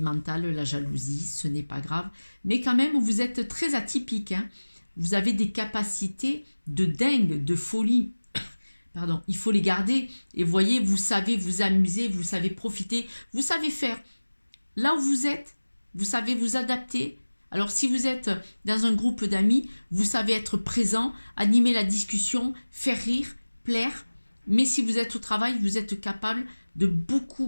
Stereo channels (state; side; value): inverted; both; correlation -1.00